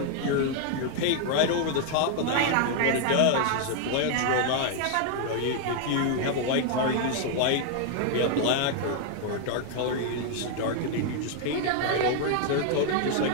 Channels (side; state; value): both; different; correlation 0.00